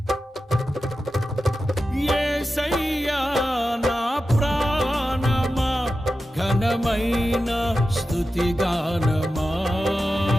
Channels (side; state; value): both; normal; correlation 0.92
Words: యేసయ్యా నా ప్రాణమా ఘనమైన స్తుతిగానమా